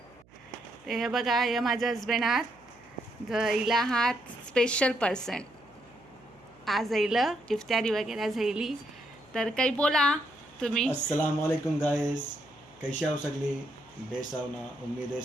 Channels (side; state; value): right; noise; hum, 29 dB below the sound